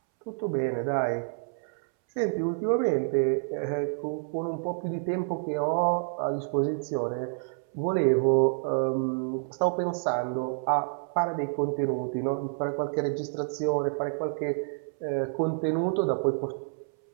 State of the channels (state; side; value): silent; left; 59 dB below the other